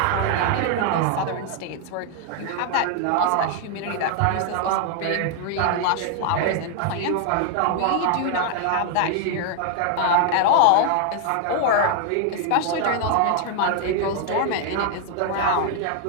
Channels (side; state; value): both; different; correlation 0.00